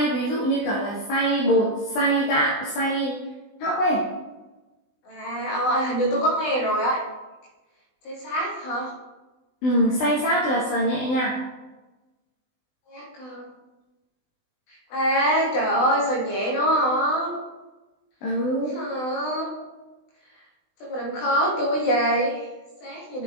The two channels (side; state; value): right; late; 20 ms